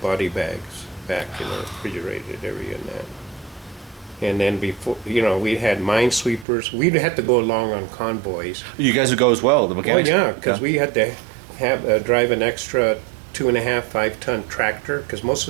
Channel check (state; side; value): drops out; left; at 6.5 s